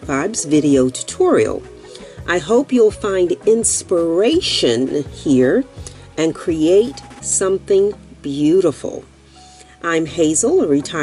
Vibes video tutorial. I hope you'll find inspiration here and create something beautiful. I'm Hazel, a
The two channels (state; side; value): identical; both; correlation 1.00